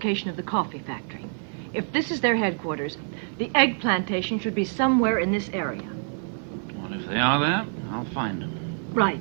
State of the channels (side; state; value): left; silent; 61 dB below the other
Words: of the coffee factory. If this is their headquarters, the egg plantation should be somewhere in this area. Well, if they are there, I'll find them.